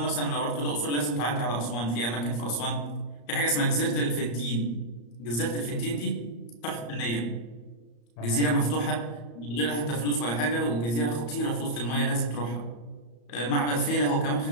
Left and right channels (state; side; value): late; right; 34 ms